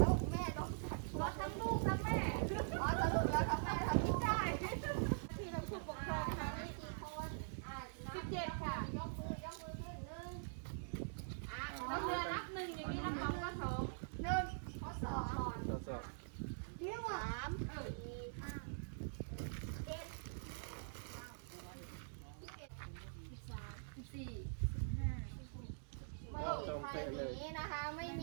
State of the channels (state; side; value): silent; left; digital silence